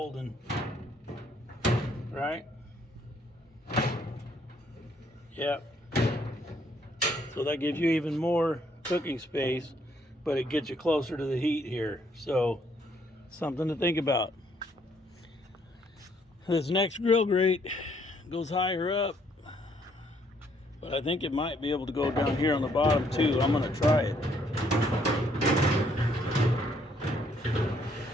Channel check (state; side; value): normal; both; correlation 0.68